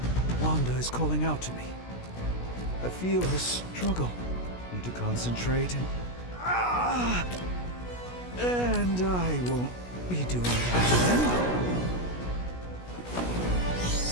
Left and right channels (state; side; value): late; right; 16 ms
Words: Wanda is calling out to me. I feel her struggle. Need to concentrate and I won't be doing that again.